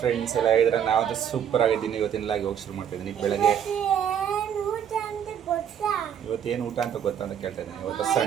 ಎಲ್ಲ ಹೇಳಿದ್ರೆ ನಾವು ಸೂಪರ್ ಆಗಿದ್ದೀನಿ. ಇವತ್ತಿನ ಹೋಗಿ ಶುರು ಮಾಡ್ತಾ ಇದ್ದೀನಿ. ಬೆಳಗ್ಗೆ ಇವತ್ತೇನು ಊಟ ಅಂತ ಗೊತ್ತಾ ಅಂತ ಕೇಳ್ತಾ ಇದ್ದೀನಿ. ಇವತ್ತು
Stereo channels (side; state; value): left; quieter; 8.9 dB